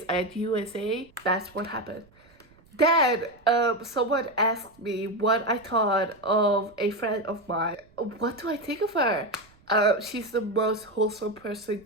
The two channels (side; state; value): right; noise; rumble, 30 dB below the sound